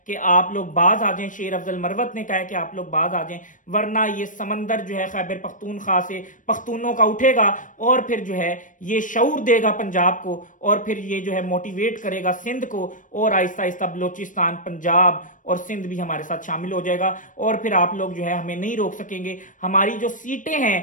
कि आप लोग बाज आ जाएं, शेर अफजल मरवत ने कहा है कि आप लोग बाज आ जाएं, वरना ये समंदर जो है खैबर पख्तूनख्वा से पख्तूनों का उठेगा और फिर जो है ये शऊर देगा पंजाब को और फिर ये जो है मोटिवेट करेगा सिंध को और आहिस्ता आहिस्ता बलोचिस्तान, पंजाब और सिंध भी हमारे साथ शामिल हो जाएगा और फिर आप लोग जो है हमें नहीं रोक सकेंगे। हमारी जो सीटें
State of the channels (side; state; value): right; late; 0.38 ms